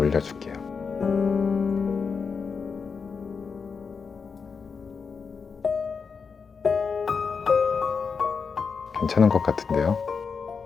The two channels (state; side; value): quieter; right; 5.5 dB